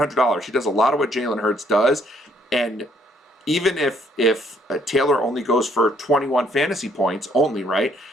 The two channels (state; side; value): normal; both; correlation 0.66